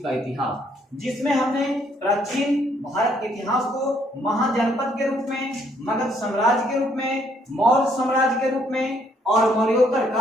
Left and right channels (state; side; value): normal; both; correlation 0.68